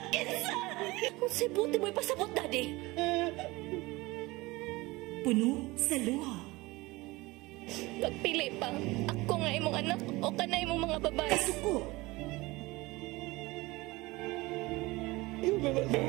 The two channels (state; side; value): quieter; left; 21.6 dB